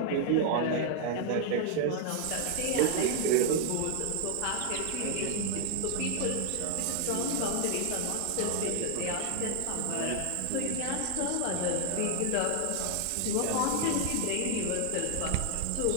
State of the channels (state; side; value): different; both; correlation 0.00